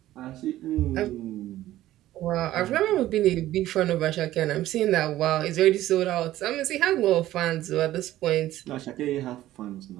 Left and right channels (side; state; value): left; quieter; 14.5 dB